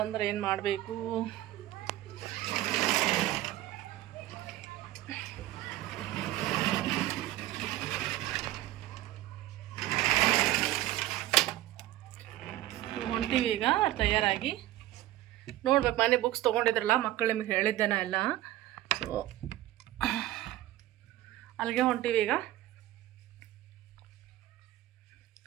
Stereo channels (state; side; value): quieter; left; 15.1 dB